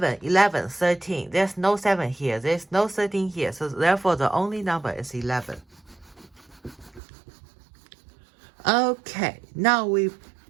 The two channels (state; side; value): drops out; left; at 7.0 s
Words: 11, 13. There's no 7 here. There's no 13 here. So therefore, the only number is 11. Okay, now